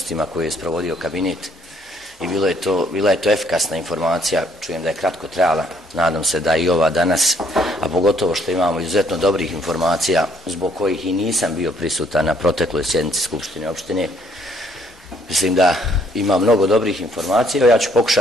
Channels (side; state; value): both; normal; correlation 0.65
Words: koje je sprovodio kabinet i bila je to efikasna informacija, čujem da je kratko trajala, nadam se da i ova danas, a pogotovo što imamo izuzetno dobrih informacija zbog kojih i nisam bio prisutan na protekloj sjednici Skupštine opštine. Mislim da ima mnogo dobrih informacija, ja ću